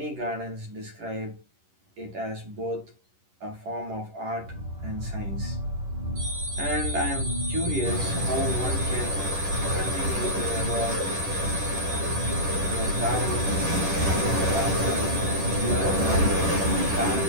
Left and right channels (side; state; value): left; late; 10 ms